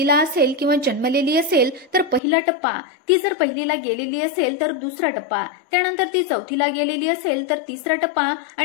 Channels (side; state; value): right; drops out; at 2.2 s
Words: असेल किंवा जन्मलेली असेल तर पहिला टप्पा, ती जर पहिलीला गेलेली असेल तर दुसरा टप्पा, त्यानंतर ती 4थीला गेलेली असेल तर तिसरा टप्पा